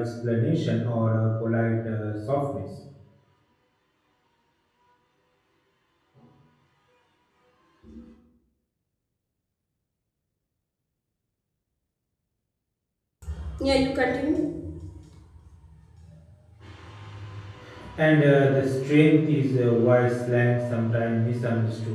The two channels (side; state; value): both; identical; correlation 1.00